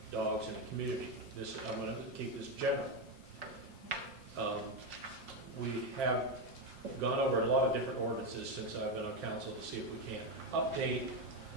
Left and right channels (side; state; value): left; late; 5.7 ms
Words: dogs in the community. This, I'm going to keep this general. We have gone over a lot of different ordinances since I've been on council to see if we can update,